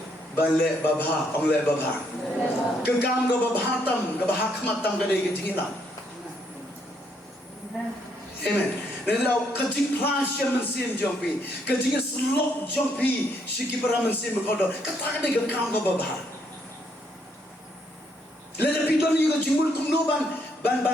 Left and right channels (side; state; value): both; normal; correlation 0.72